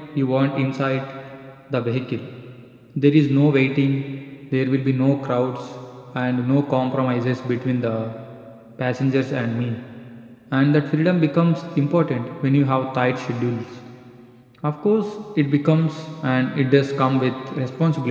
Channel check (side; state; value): both; identical; correlation 1.00